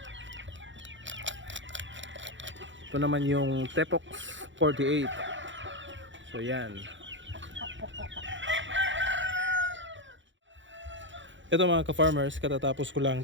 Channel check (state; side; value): late; left; 0.54 ms